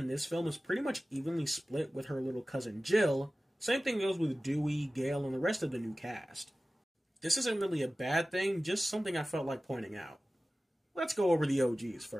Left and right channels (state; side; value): normal; both; correlation 0.96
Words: this film is pretty much evenly split with her little cousin Jill. Same thing goes with Dewey, Gale, and the rest of the new cast. This isn't really a bad thing, just something I felt like pointing out. Let's go over the OGs